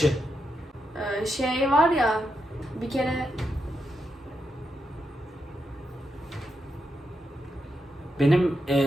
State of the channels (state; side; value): normal; both; correlation 0.83